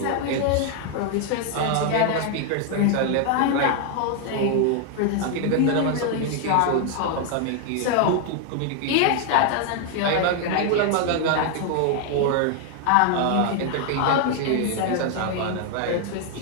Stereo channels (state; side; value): different; both; correlation 0.00